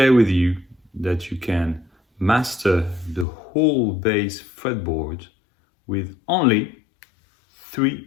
with you that you can master the whole bass fretboard with only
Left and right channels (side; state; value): right; drops out; at 3.2 s